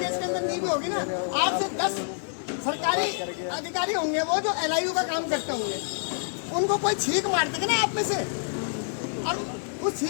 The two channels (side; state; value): right; silent; digital silence